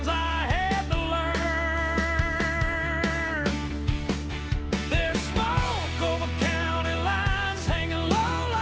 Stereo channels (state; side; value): identical; both; correlation 1.00